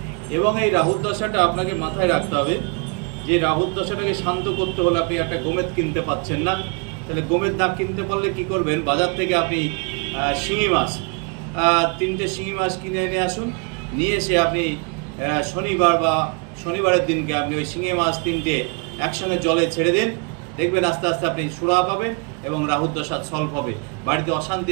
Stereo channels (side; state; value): left; quieter; 34.7 dB